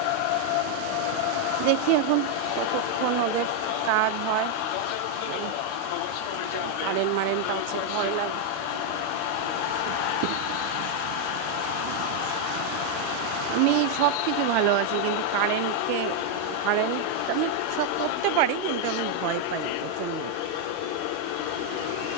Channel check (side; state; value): both; different; correlation 0.00